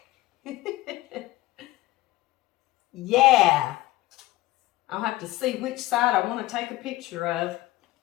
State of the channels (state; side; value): quieter; right; 17.4 dB